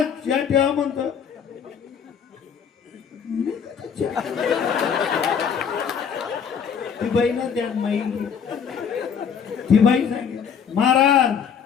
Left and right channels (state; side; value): quieter; right; 7.2 dB